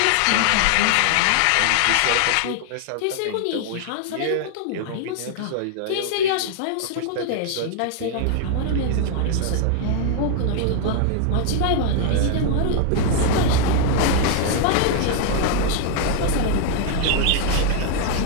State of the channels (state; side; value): different; both; correlation 0.00